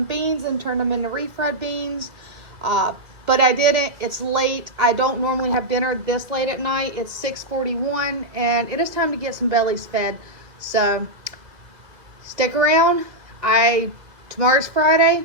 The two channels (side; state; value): left; late; 2.2 ms